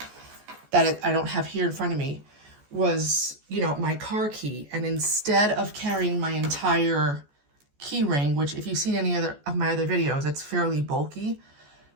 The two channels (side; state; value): left; late; 14 ms